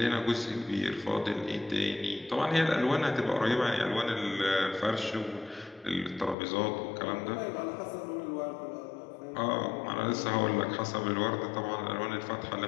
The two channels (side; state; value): right; drops out; at 6.4 s